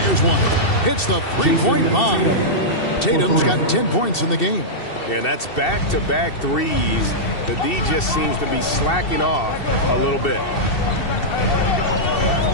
one. Hits the three-point bomb. Tatum's got 10 points in the game. Yeah, and that's back-to-back threes. The D just seems to be slacking off a little bit.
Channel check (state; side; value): late; right; 2.7 ms